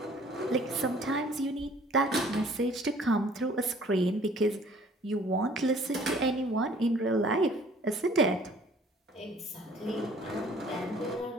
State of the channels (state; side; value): normal; both; correlation 0.55